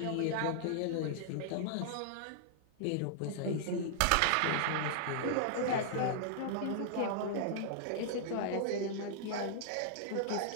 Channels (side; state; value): both; different; correlation -0.01